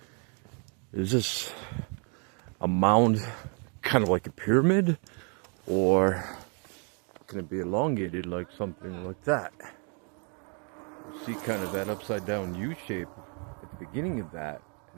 this a mound kind of like a pyramid, or can it be elongated like something like that? You see kind of that upside down U shape at the beginning of that,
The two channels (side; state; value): left; quieter; 38.3 dB